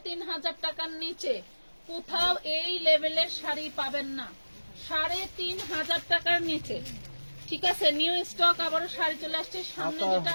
টাকার নিচে কোথাও এই লেভেলের শাড়ি পাবেন না। 3500 টাকার নিচে, ঠিক আছে? নিউ স্টক আবারও শাড়ি চলে আসছে। সামনে যেটা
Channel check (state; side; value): inverted; both; correlation -1.00